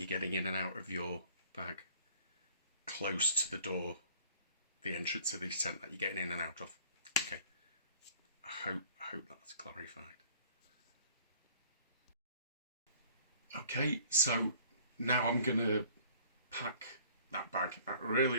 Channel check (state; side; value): inverted; both; correlation -0.54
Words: getting in and out of your bag close to the door, the entrance of this tent that you're getting in and out of. Okay, I hope that's clarified. Okay, so now I'm gonna pack that bag, that really